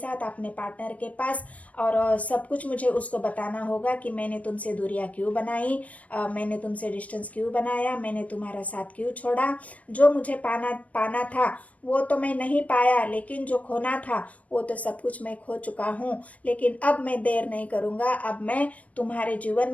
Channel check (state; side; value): late; right; 0.067 ms